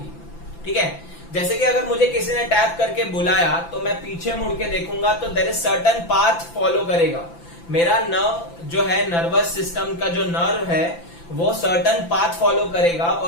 ठीक है। जैसे कि अगर मुझे किसी ने टैप करके बुलाया, तो मैं पीछे मुड़ के देखूंगा, तो there is certain path follow करेगा। मेरा नर्व जो है, नर्वस सिस्टम का जो नर्व है, वो सर्टेन पाथ फॉलो करेगा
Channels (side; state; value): right; late; 5.9 ms